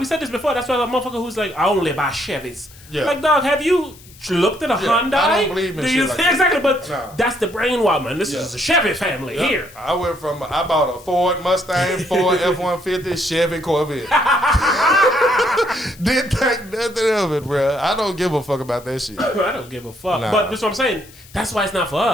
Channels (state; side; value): noise; left; hiss, 23 dB below the sound